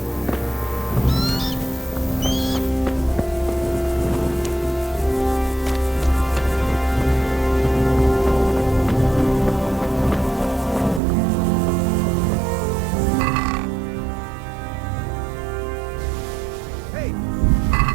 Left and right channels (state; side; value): drops out; left; at 11.0 s